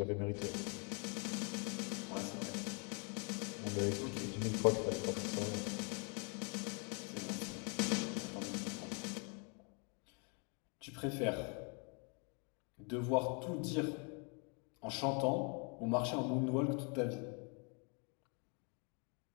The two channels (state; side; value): quieter; right; 36.0 dB